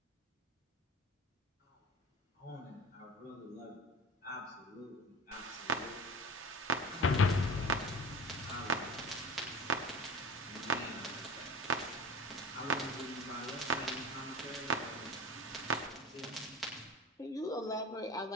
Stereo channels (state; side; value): normal; both; correlation 0.33